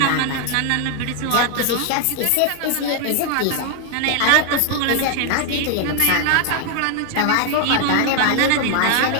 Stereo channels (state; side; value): different; both; correlation 0.00